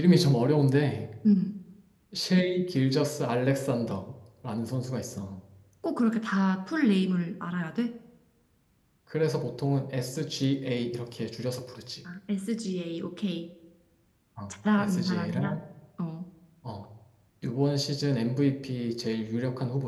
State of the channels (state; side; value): identical; both; correlation 1.00